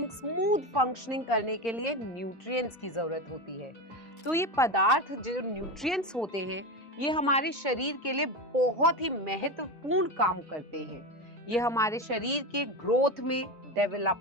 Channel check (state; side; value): normal; both; correlation 0.20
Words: स्मूथ फंक्शनिंग करने के लिए न्यूट्रिएंट्स की जरूरत होती है। तो ये पदार्थ जो न्यूट्रिएंट्स होते हैं, ये हमारे शरीर के लिए बहुत ही महत्वपूर्ण काम करते हैं। ये हमारे शरीर के ग्रोथ में,